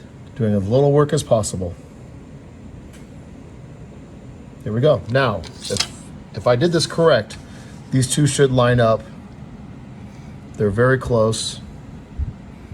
Doing as little work as possible. Here we go. Now, if I did this correct, these two should line up. They're very close.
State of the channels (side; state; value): both; identical; correlation 1.00